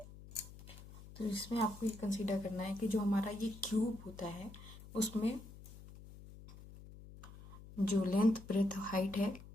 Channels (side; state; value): left; noise; hum, 17 dB below the sound